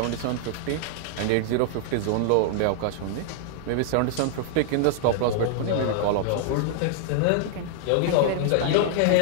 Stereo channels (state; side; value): different; both; correlation -0.01